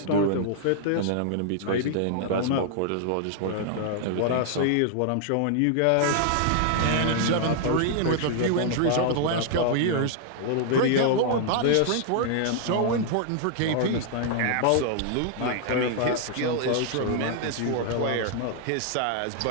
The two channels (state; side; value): different; both; correlation -0.01